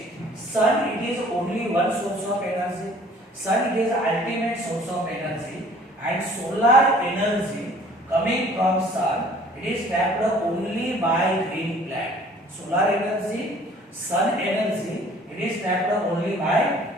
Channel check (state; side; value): normal; both; correlation 0.53